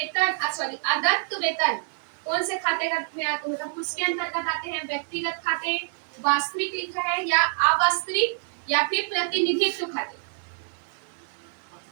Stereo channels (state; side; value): silent; left; 61 dB below the other